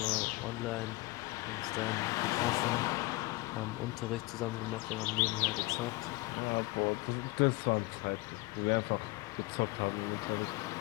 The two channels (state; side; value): quieter; right; 22.3 dB